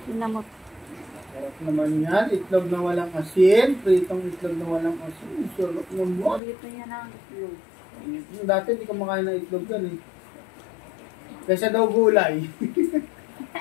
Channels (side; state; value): right; drops out; at 6.4 s